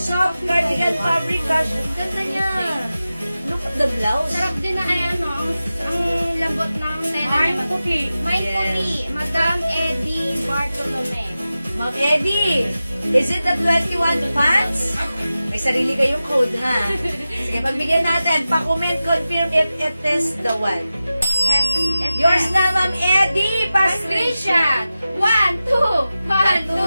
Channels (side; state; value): both; inverted; correlation -0.94